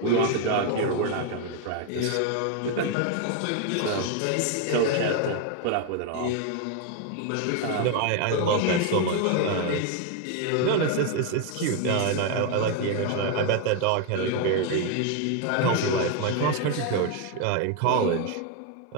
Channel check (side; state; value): both; different; correlation 0.01